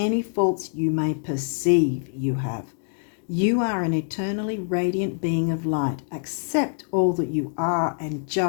faults you may perceive you have. You are an eternally radiant being of light. Accept all that you are and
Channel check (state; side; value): silent; right; digital silence